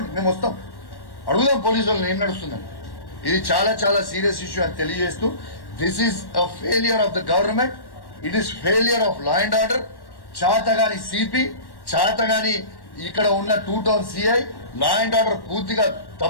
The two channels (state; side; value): late; right; 1.1 ms